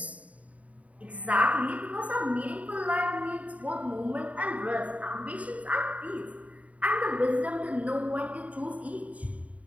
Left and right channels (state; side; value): late; left; 0.068 ms